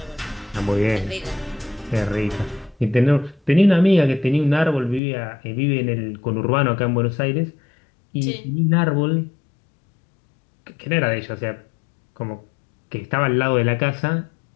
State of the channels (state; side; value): drops out; right; at 5.0 s